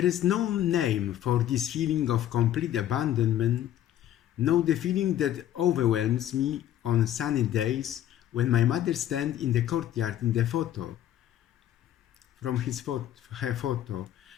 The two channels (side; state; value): right; quieter; 11.8 dB